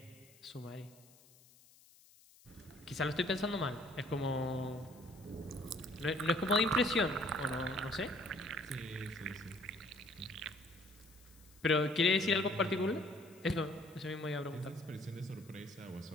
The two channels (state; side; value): noise; left; hiss, 26 dB below the sound